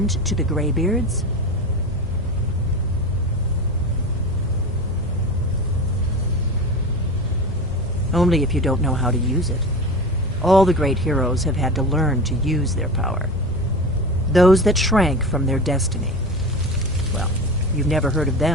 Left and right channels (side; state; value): both; normal; correlation 0.28